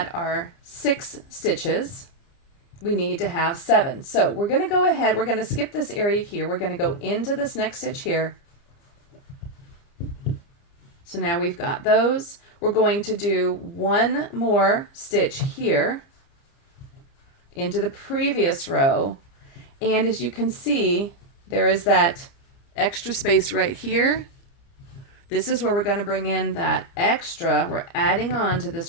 our 6 stitches. We need to have 7. So we're going to go ahead. We're going to skip this area here. We're going to go into this next stitch here. So now we've got those. We're going to do 1 more stitch here into the previous row. And as you can see, there is that extra space right here. This is where we're going to bring in that extra. We're adding on to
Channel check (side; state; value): right; late; 29 ms